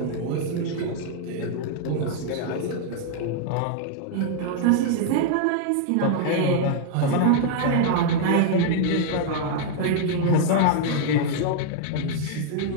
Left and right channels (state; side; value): different; both; correlation 0.00